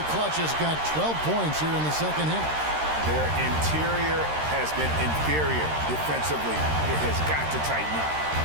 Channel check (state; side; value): late; left; 13 ms